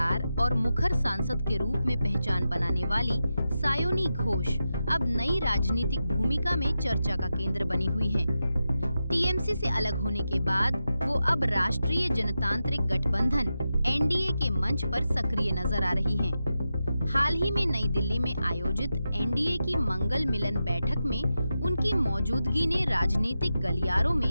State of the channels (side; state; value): both; inverted; correlation -0.90